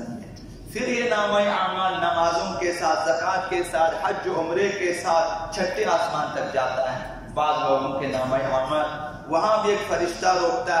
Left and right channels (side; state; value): both; identical; correlation 1.00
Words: ہے۔ پھر یہ نامہ اعمال نمازوں کے ساتھ، زکوٰۃ کے ساتھ، حج و عمرے کے ساتھ چھٹے آسمان تک جاتا ہے۔ بعض لوگوں کے نامہ اعمال، وہاں بھی ایک فرشتہ روکتا